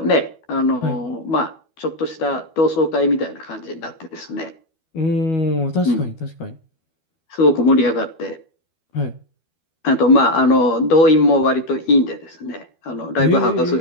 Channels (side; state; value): right; late; 12 ms